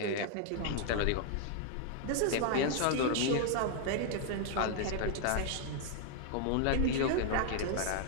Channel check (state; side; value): different; both; correlation 0.00